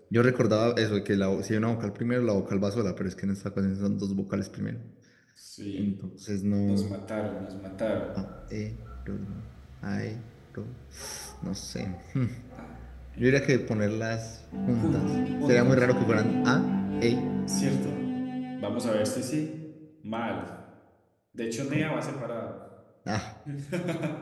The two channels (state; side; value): identical; both; correlation 1.00